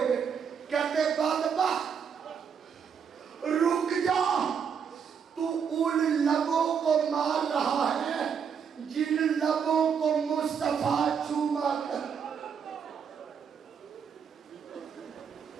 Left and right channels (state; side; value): quieter; left; 7.0 dB